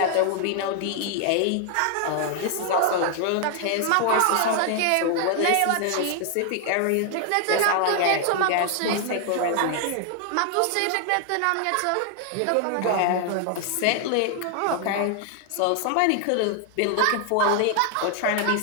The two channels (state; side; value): different; both; correlation 0.00